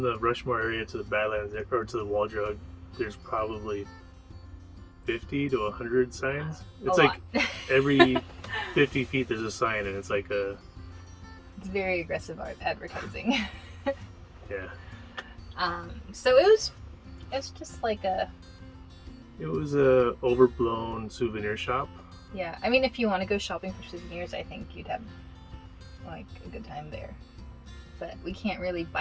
the Rushmore area to the Badlands or to the Wall Drug, there's probably 50 to 100 signs. It's like every 50 feet there's a sign, and it's like it's very aggressive advertising. Yeah. So it was just like it was a overblown souvenir shop. Yeah, I mean, if you want to go shopping for souvenirs, I think you'd have like a good time there. But we can't really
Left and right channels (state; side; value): identical; both; correlation 1.00